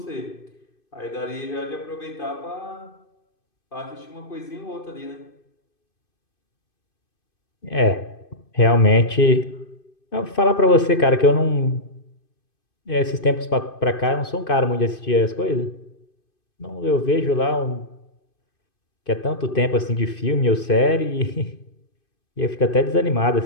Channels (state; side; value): late; right; 2.5 ms